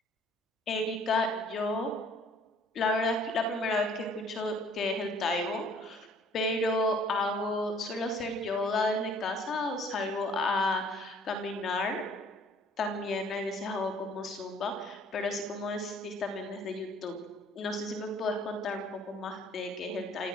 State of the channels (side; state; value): both; normal; correlation 0.56